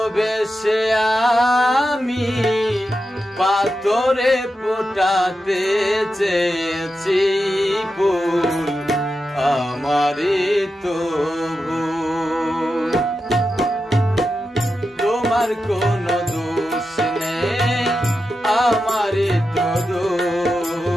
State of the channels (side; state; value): both; normal; correlation 0.89